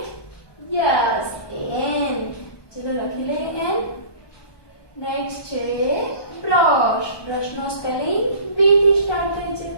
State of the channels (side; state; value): right; late; 1.2 ms